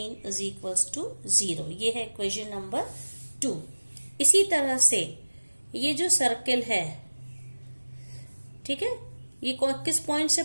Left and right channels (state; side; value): inverted; both; correlation -1.00